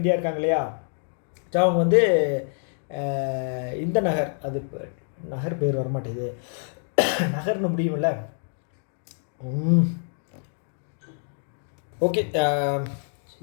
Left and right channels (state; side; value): silent; right; digital silence